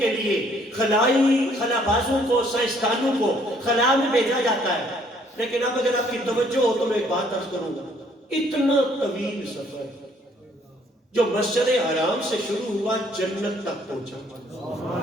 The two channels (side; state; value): both; normal; correlation 0.63